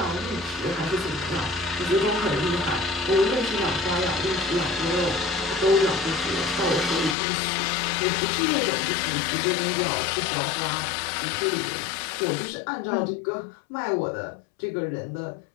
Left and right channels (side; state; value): right; drops out; at 7.2 s